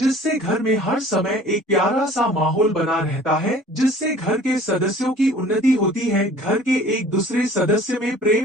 घर में हर समय एक प्यारा सा माहौल बना रहता है, जिससे घर के सदस्यों की उन्नति होती है, घर के एक दूसरे सदस्य में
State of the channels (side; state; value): both; normal; correlation 0.49